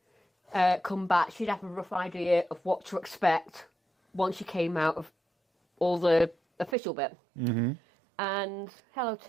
back, she'd have a rough idea of what to expect once she came out of all the official bit. Mm-hmm. And hello,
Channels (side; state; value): left; drops out; at 6.8 s